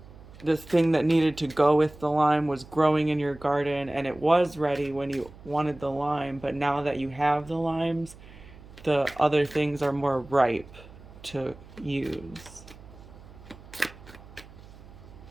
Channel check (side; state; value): right; noise; hum, 20 dB below the sound